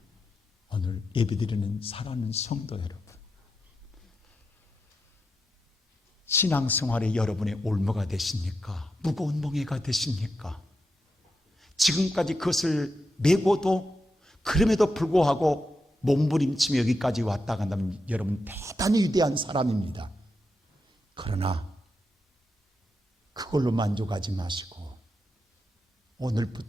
오늘 예배드리는 사랑하는 성도 여러분, 신앙생활에 여러분의 올무가 되십니까? 무거운 멍에가 되십니까? 지금까지 그것을 메고도 그럼에도 불구하고 몸부림치며 여기까지 왔다 간다면 여러분 대단히 위대한 사람입니다. 그러나 그걸로 만족하지 마시고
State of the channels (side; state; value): both; normal; correlation 0.86